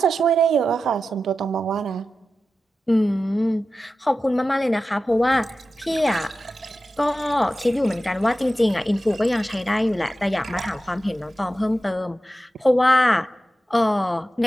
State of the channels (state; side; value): normal; both; correlation 0.92